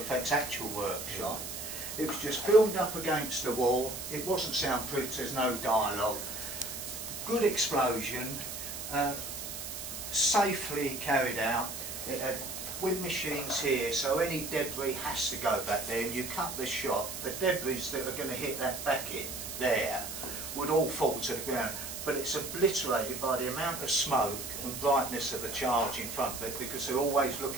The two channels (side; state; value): right; noise; hiss, 7 dB below the sound